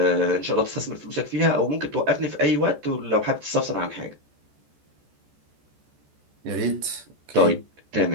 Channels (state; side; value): late; left; 14 ms